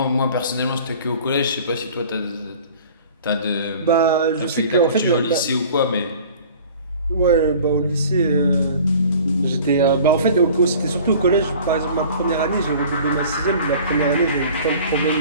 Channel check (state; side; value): inverted; both; correlation -0.46